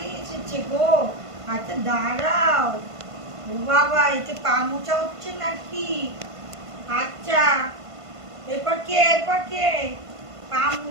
এসেছে গো। আচ্ছা দাঁড়াও। ও বাবা, এতে পা মোছা হচ্ছে নাকি? আচ্ছা, এরপর কে পা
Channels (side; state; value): left; late; 1.5 ms